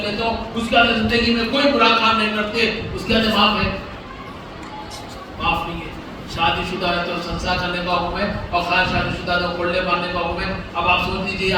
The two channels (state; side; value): identical; both; correlation 1.00